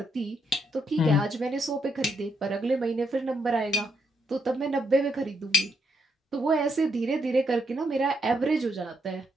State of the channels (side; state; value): both; normal; correlation 0.77